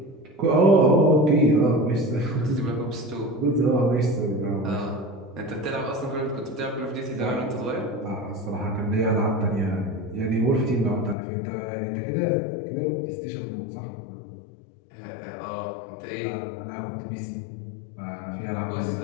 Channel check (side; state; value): right; drops out; at 11.2 s